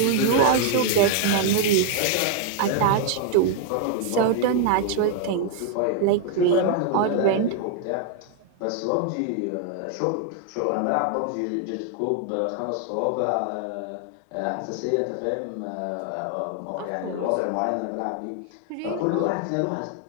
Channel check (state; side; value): different; both; correlation 0.00